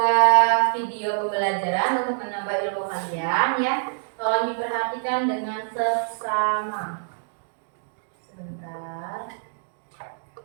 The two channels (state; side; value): silent; left; digital silence